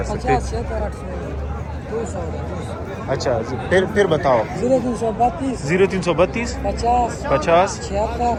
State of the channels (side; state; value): both; identical; correlation 1.00